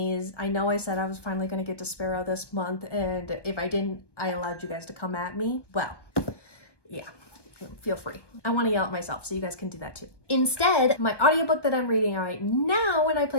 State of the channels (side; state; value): right; late; 1.2 ms